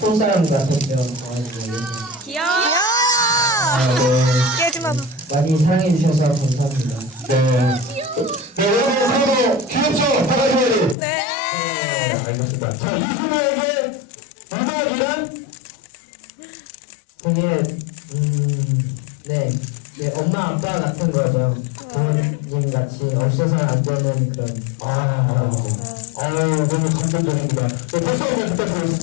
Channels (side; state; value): right; drops out; at 11.0 s